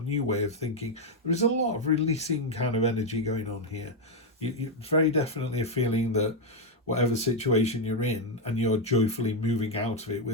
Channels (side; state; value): both; normal; correlation 0.02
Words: new way of thinking. There is a lot of releasing kind of energy going on here. You very definitely a feeling that whatever situation you're in, and you're joyfully moving out of it